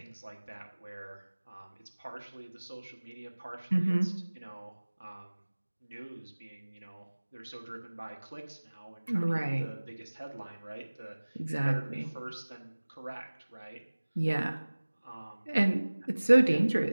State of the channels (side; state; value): both; inverted; correlation -1.00